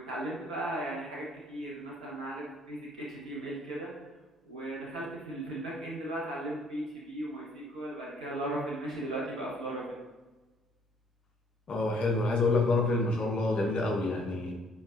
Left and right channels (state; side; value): normal; both; correlation 0.62